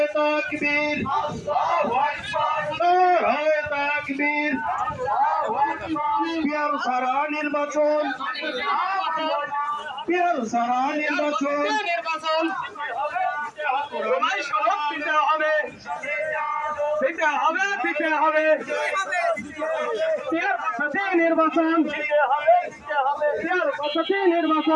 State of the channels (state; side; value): identical; both; correlation 1.00